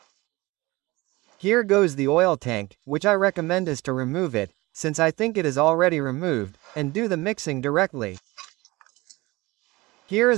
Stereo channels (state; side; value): quieter; left; 21.5 dB